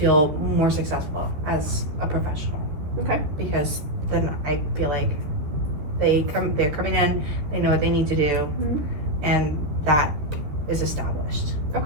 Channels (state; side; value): late; left; 13 ms